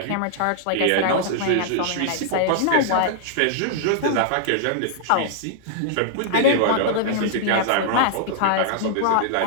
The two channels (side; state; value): both; different; correlation -0.01